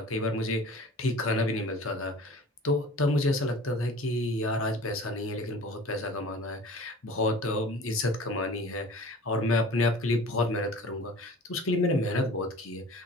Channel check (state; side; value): normal; both; correlation 0.43